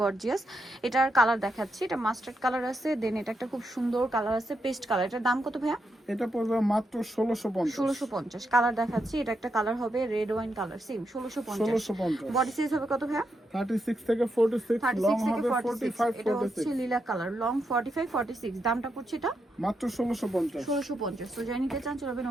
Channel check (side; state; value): both; normal; correlation 0.82